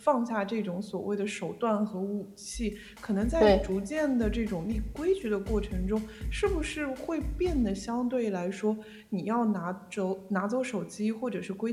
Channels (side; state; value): both; identical; correlation 1.00